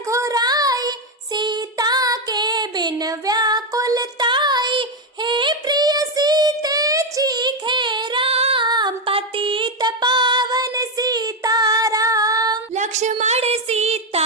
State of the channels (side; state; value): both; normal; correlation 0.07